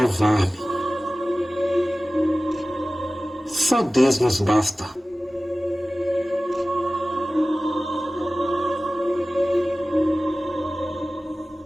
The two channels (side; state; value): both; normal; correlation 0.97